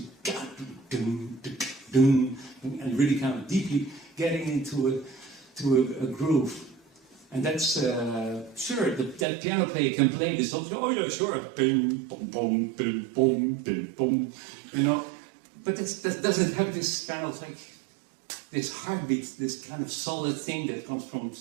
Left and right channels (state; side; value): drops out; left; at 9.2 s